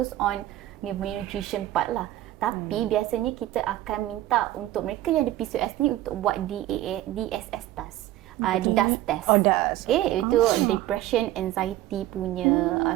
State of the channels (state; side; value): quieter; left; 14.7 dB